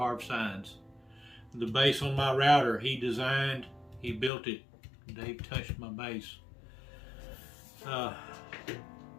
signs. The base on my router he designed, he built it. Dave touched my base.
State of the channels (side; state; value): right; drops out; at 4.3 s